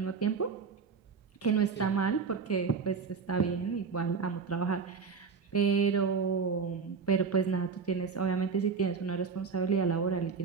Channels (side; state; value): left; quieter; 5.4 dB